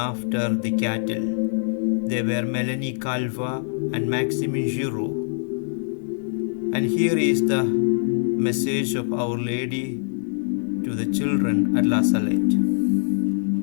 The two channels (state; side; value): silent; right; digital silence